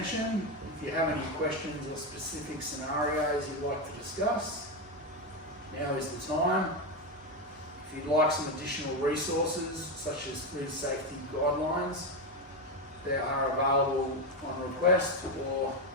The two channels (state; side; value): normal; both; correlation 0.10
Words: If you have any questions or specific scenarios you'd like to discuss, now is the time. If you'd like some additional resources, such as food safety guidelines, they are available on request, or